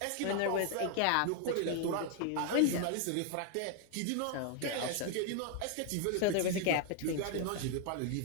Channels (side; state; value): both; different; correlation 0.00